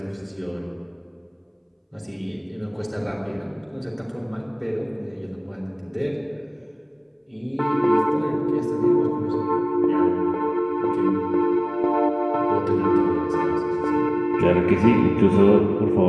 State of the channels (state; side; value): identical; both; correlation 1.00